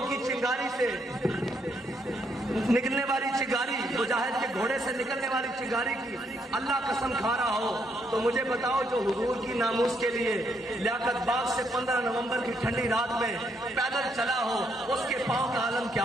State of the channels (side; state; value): both; normal; correlation 0.74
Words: کی چنگاری سے نکلنے والی چنگاری، مجاہد کے گھوڑے سے نکلنے والی چنگاری کی اللہ قسم کھا رہا ہو، تو مجھے بتاؤ جو حضور کی ناموس کے لیے لیاقت باغ سے 15 نومبر کی ٹھنڈی رات میں پیدل چلا ہو، اس کے پاؤں کا عالم کیا